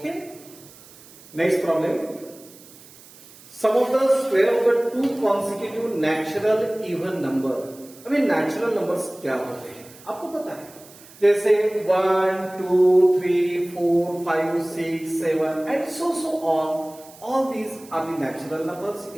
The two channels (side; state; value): right; noise; hiss, 22 dB below the sound